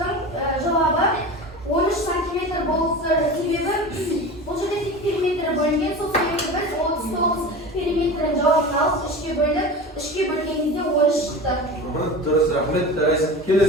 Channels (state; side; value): normal; both; correlation 0.32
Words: жауабы 13 сантиметр болса себебі бұл жерде тек периметрі бөлінген, сол себепті біз 39 периметрін жауабын алып үшке бөлдік, үшке бөлгенде 13 шықты. Дұрыс, рахмет.